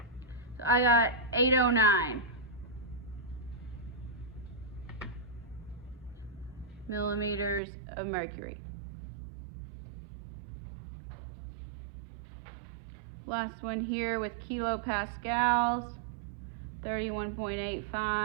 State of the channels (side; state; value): left; drops out; at 7.6 s